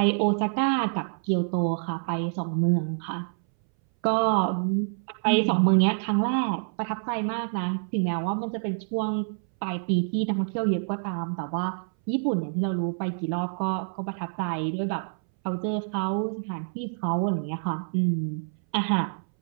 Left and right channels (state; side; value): silent; left; 60 dB below the other